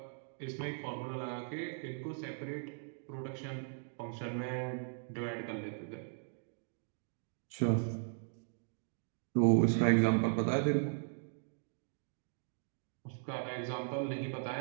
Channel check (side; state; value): left; silent; digital silence